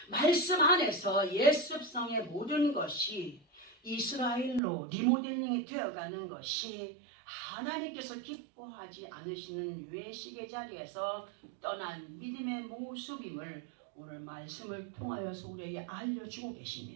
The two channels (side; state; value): left; drops out; at 4.6 s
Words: 말씀 안에서 예습성의 모든 것이 이스라엘로 리모델링이 되어가는 것이 하나님께서 기뻐하지 않으시는 외식의 자리에서 떠난 믿음의 모습임을 오늘 말씀을 통하여서 우리에게 알려주고